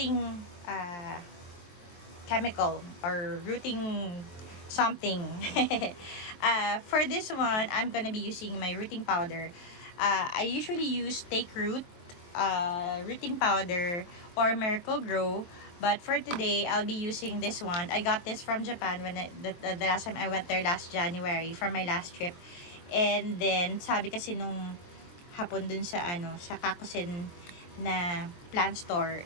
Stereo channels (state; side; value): late; right; 23 ms